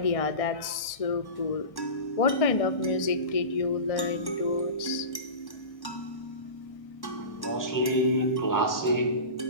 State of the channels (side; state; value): right; late; 1.6 ms